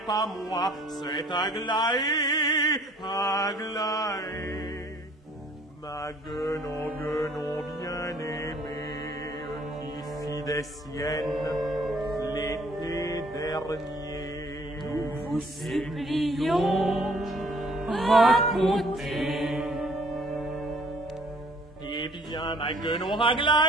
pas moi, c'est Aglaé, Aglaé. Ma guenon bien-aimée, qui fit des siennes l'été dernier. Nous vous supplions, racontez. Eh bien, ma guenon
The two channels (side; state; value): both; normal; correlation 0.58